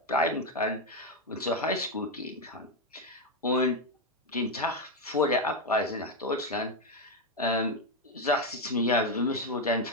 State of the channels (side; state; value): both; normal; correlation 0.06